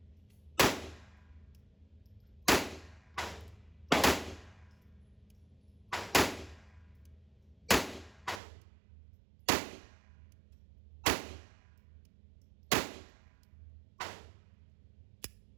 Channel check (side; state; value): left; drops out; at 8.4 s